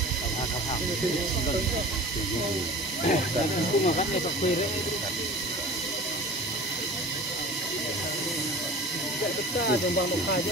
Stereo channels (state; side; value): normal; both; correlation 0.39